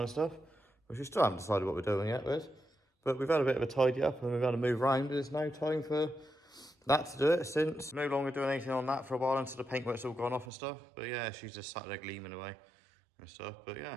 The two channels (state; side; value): drops out; left; at 10.5 s